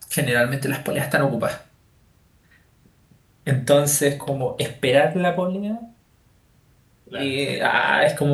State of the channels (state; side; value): identical; both; correlation 1.00